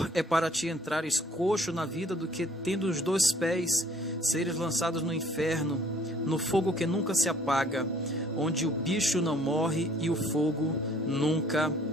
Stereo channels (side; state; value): both; normal; correlation 0.59